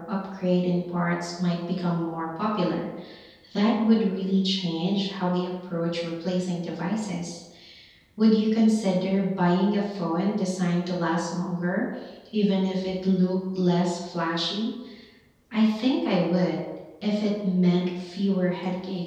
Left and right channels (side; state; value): both; identical; correlation 1.00